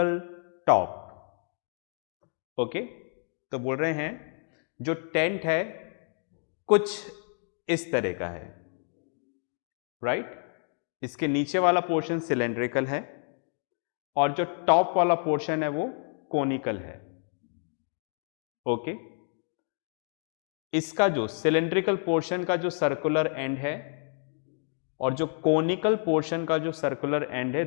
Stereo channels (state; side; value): silent; right; 58 dB below the other